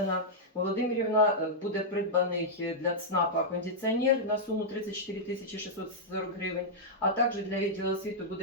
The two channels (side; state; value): both; normal; correlation -0.08